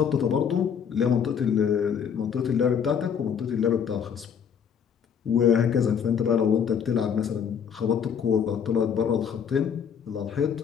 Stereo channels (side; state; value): right; quieter; 7.6 dB